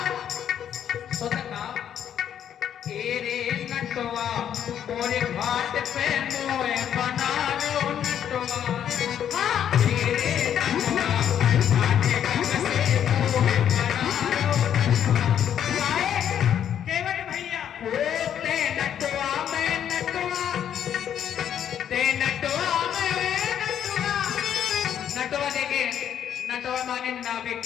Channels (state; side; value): quieter; right; 9.5 dB